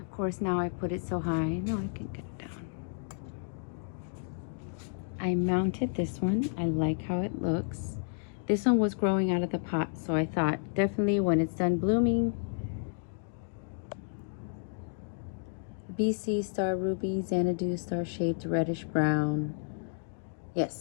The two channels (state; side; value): silent; right; digital silence